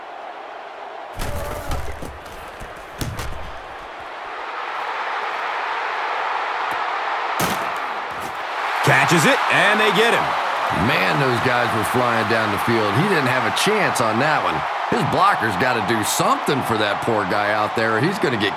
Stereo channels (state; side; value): identical; both; correlation 1.00